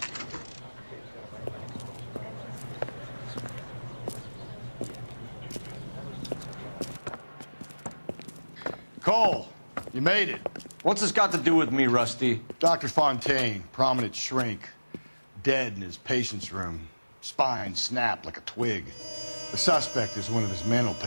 Cole, you made it. What's this got to do with me, Rusty? Dr. Fontaine, prominent shrink, dead in his patient's room. Spine snapped like a twig. The suspect is one of his mental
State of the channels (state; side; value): inverted; both; correlation -1.00